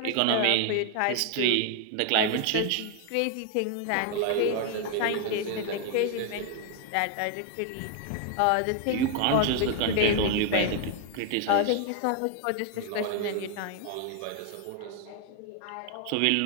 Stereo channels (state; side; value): different; both; correlation 0.00